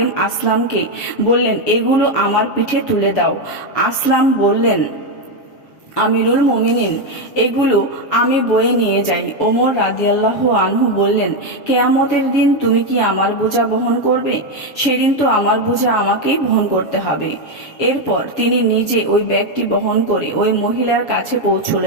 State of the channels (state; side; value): late; right; 7.3 ms